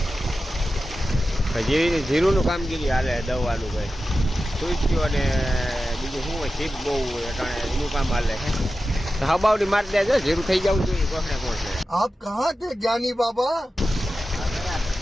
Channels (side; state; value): both; normal; correlation 0.93